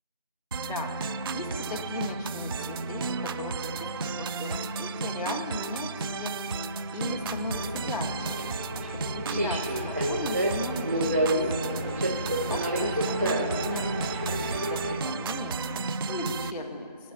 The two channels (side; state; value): both; inverted; correlation -0.50